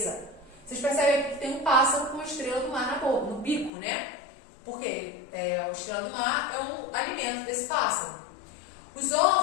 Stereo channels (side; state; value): right; drops out; at 3.7 s